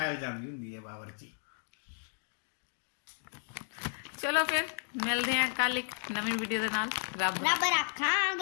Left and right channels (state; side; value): silent; right; digital silence